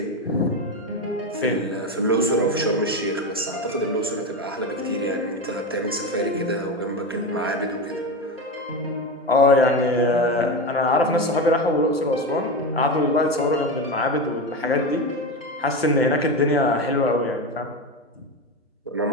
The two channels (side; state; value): both; normal; correlation 0.18